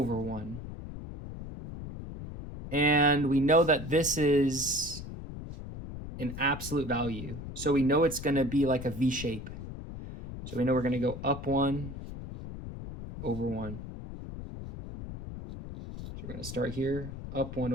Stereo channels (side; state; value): left; noise; rumble, 10 dB below the sound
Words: 1. And we know that this is an absolute value. So we know it's going to be like a V shape. So we know we're going to go up 1 over 1. So we're going to start here, up 1